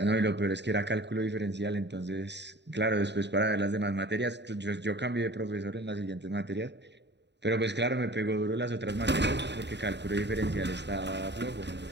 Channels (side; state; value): left; late; 0.51 ms